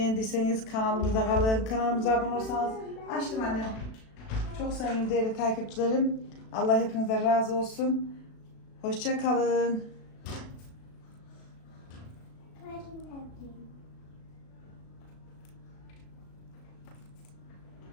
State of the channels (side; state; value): right; late; 36 ms